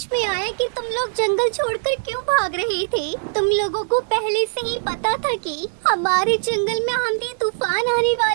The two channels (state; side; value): silent; left; digital silence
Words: में आया कि तुम लोग जंगल छोड़कर क्यों भाग रहे थे। तुम लोगों को पहले से ही पता था कि हमारे जंगल में आंधी तूफान आने